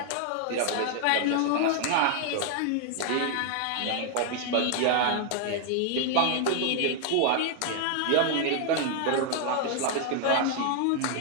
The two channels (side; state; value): both; different; correlation 0.00